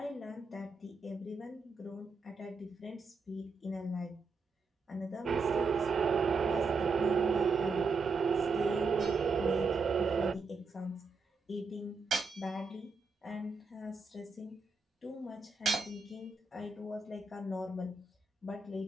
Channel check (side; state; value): left; quieter; 4.1 dB